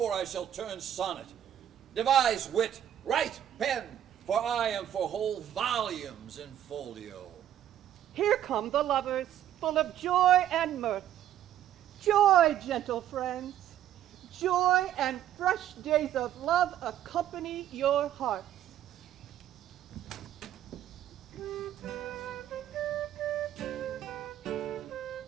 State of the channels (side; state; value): left; quieter; 11.1 dB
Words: I shall turn sonnet. Devise wit, write pen, for I am for whole volumes in folio. Here come the lovers, full of joy and mirth. Joy, gentle friends. Joy and fresh days of love accompany your hearts.